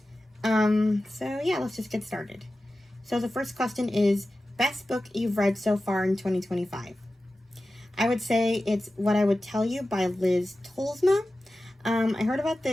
So yeah, let's just get started. So the first question is, best book you've read so far in 2025? I would say it's What I Would Tell You by Liz Tolsma. I heard about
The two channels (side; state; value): both; normal; correlation 0.94